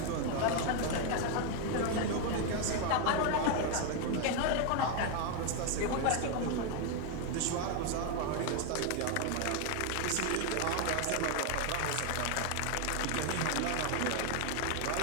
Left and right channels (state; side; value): different; both; correlation 0.01